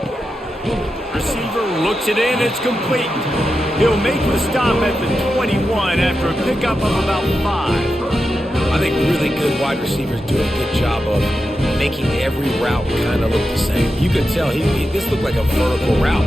Receiver looks it in, it's complete. He'll make the stop at the 21 after a pickup of about 5. I think really good wide receivers do a good job of making every route kind of look the same. You could tell this looked like a vertical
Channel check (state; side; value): normal; both; correlation 0.89